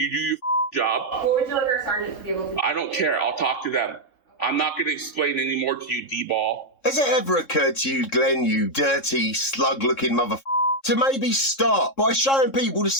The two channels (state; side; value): late; right; 3.7 ms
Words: job. What would you like our sergeant to be able to do? I don't care. I'll talk to them. I'm not going to explain any more to you, D-ball. Has it ever occurred to you, Glenn, you dirty, slug-looking to maybe start by showing people the